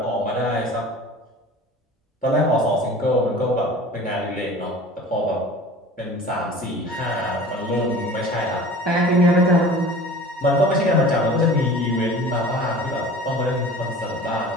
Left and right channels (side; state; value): both; normal; correlation 0.41